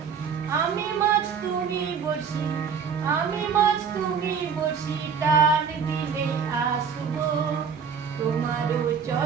আমি মাছ তুমি বসি, আমি মাছ তুমি বসি, টান দিলে আসবো তোমারও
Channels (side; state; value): left; quieter; 6.5 dB